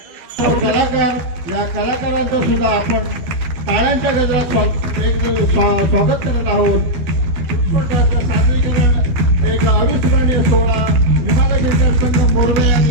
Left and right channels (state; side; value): late; left; 12 ms